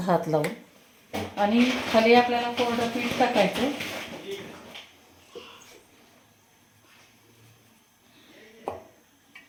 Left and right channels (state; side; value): identical; both; correlation 1.00